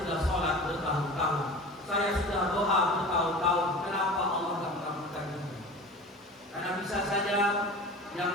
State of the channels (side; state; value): both; normal; correlation 0.37